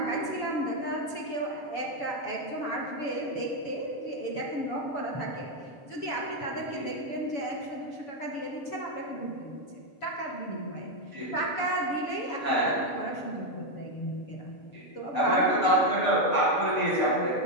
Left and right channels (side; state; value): right; late; 7.0 ms